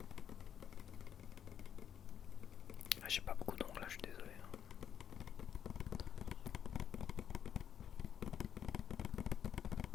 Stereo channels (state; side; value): quieter; right; 8.9 dB